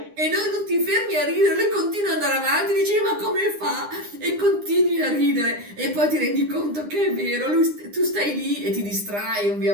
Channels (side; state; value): left; late; 9.8 ms